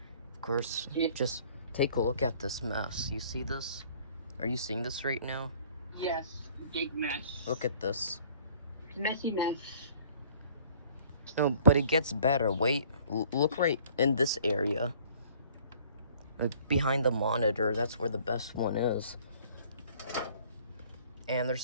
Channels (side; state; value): both; inverted; correlation -0.55